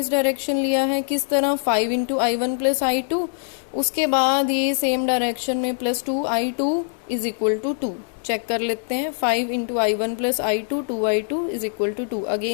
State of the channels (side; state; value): right; silent; digital silence